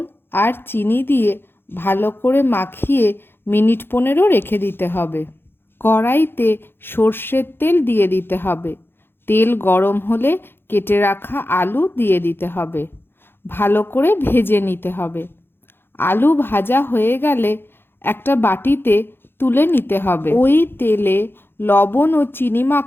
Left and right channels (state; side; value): late; right; 0.10 ms